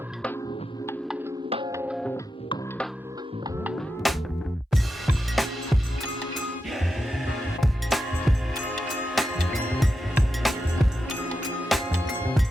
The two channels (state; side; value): normal; both; correlation 0.88